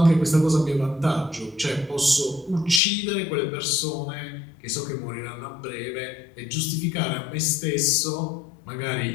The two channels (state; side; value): drops out; right; at 2.8 s